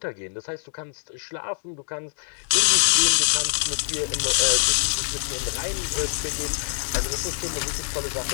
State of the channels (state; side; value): silent; right; digital silence